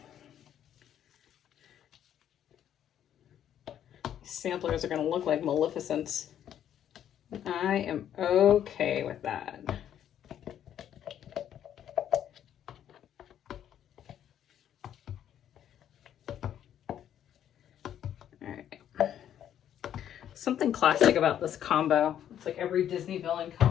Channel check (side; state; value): right; quieter; 10.3 dB